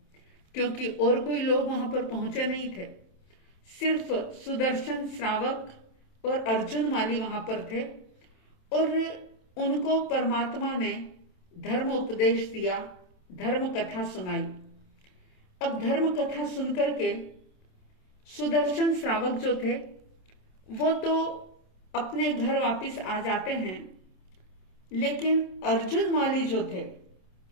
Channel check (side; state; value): right; late; 27 ms